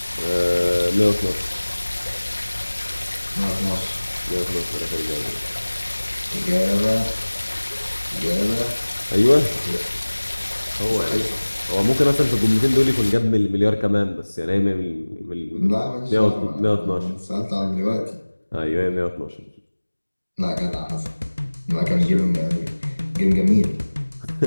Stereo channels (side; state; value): both; inverted; correlation -1.00